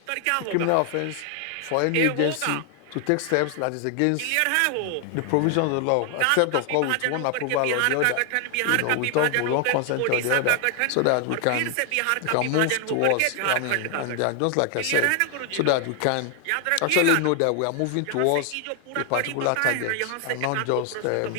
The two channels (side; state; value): both; different; correlation 0.00